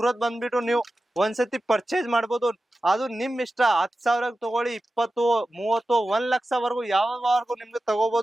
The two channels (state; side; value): normal; both; correlation 0.94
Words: ಬಂದ್ಬಿಟ್ಟು ನೀವು ಒಂದ್ಸತಿ ಪರ್ಚೇಸ್ ಮಾಡ್ಬೋದು. ಅದು ನಿಮ್ ಇಷ್ಟ. 10,000 ತಗೊಳ್ಳಿ, 20, 30, 1 ಲಕ್ಷವರೆಗೂ ಯಾವವರೆಗೂ ನಿಮ್ಗೆ